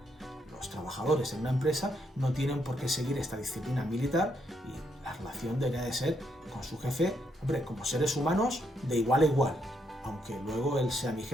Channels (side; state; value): both; normal; correlation 0.76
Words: los trabajadores en una empresa no tienen por qué seguir esta disciplina militar y la relación debería de ser con su jefe, hombre, como seres humanos de igual a igual, aunque luego él sea mi